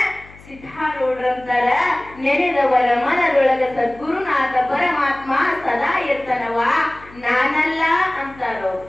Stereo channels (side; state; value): left; noise; hum, 22 dB below the sound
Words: ಸಿದ್ಧಾರೂಢರಂತಾರ, ನೆನೆದವರ ಮನದೊಳಗ ಸದ್ಗುರುನಾಥ ಪರಮಾತ್ಮ ಸದಾ ಇರ್ತಾನವ, ನಾನಲ್ಲ ಅಂತಾರೋ.